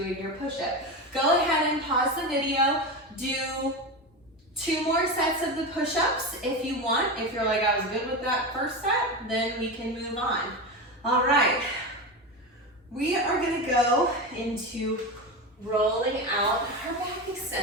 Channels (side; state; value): both; normal; correlation 0.20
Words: your push-up. Go ahead and pause the video. Do 2 more sets of the push-ups if you want. If you're like, I was good with that first set, then we can move on. All right. We are gonna go into rolling out our back